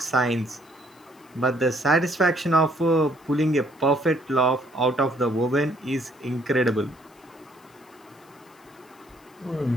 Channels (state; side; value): noise; left; hiss, 30 dB below the sound